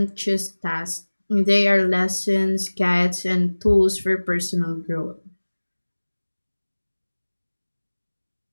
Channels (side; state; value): both; inverted; correlation -1.00